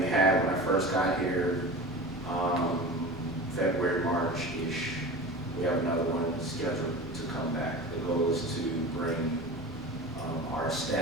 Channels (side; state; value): both; normal; correlation 0.33